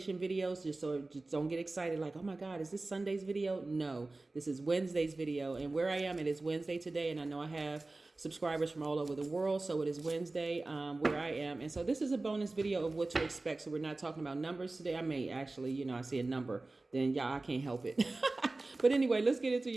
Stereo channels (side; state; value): left; quieter; 3.2 dB